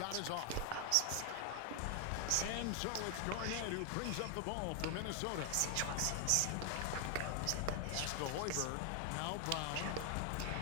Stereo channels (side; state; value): both; different; correlation 0.00